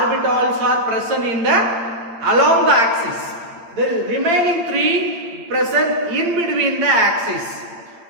are present in the along the axis. The remaining 3 present in between the axis.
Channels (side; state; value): left; late; 8.8 ms